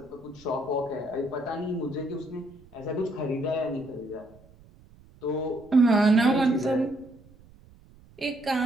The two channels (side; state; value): right; noise; rumble, 25 dB below the sound